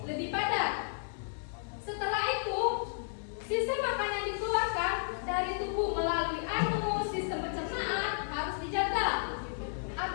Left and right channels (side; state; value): right; silent; digital silence